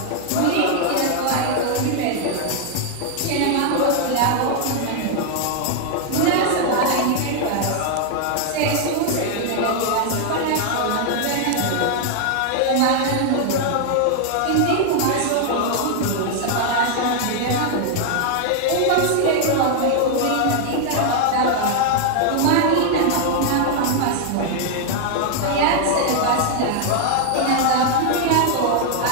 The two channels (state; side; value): different; both; correlation 0.00